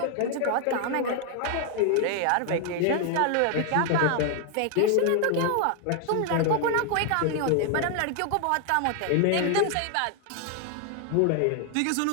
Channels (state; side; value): different; both; correlation 0.00